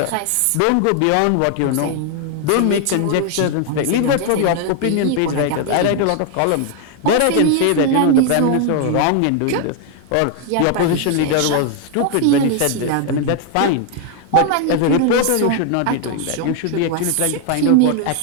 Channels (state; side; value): different; both; correlation 0.00